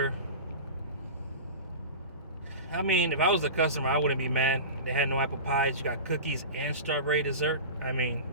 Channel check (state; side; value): inverted; both; correlation -0.30